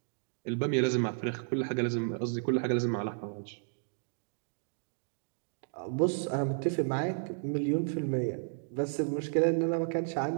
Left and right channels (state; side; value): silent; left; digital silence